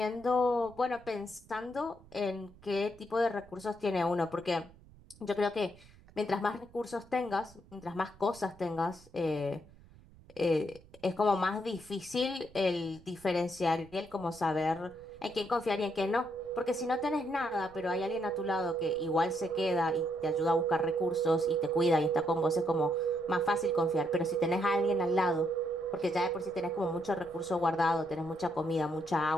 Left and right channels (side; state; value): right; noise; rumble, 24 dB below the sound